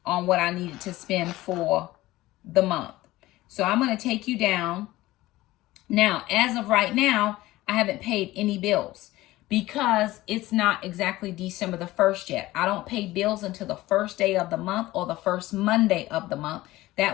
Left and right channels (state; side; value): quieter; right; 17.6 dB